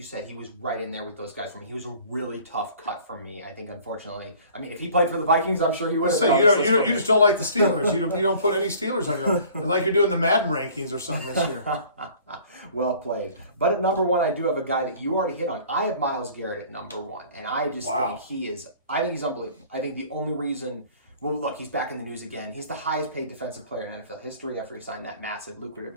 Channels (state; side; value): inverted; both; correlation -0.50